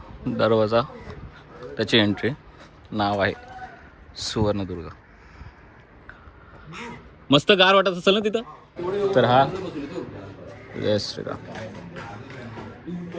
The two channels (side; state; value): both; identical; correlation 1.00